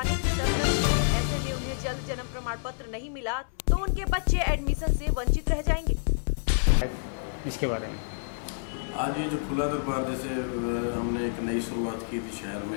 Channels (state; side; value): silent; right; 59 dB below the other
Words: इसके बारे में। आज ये जो खुला दरबार जैसे हमने एक नई शुरुआत की थी शहर